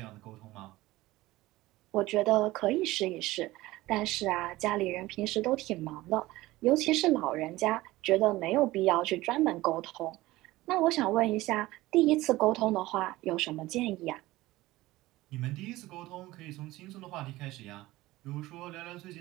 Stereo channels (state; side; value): quieter; left; 18.3 dB